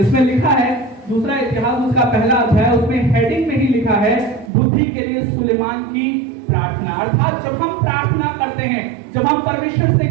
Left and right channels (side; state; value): left; drops out; at 4.5 s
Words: लिखा है, दूसरा इतिहास उसका पहला अध्याय, उसमें हेडिंग में ही लिखा है, बुद्धि के लिए सुलेमान की प्रार्थना। अर्थात जब हम प्रार्थना करते हैं, जब हम परमेश्वर से